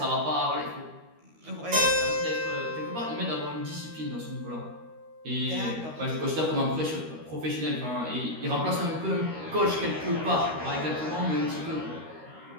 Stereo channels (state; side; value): late; left; 13 ms